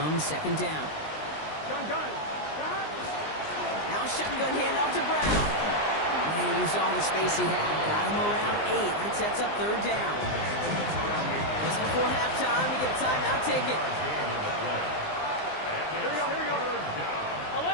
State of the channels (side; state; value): right; late; 19 ms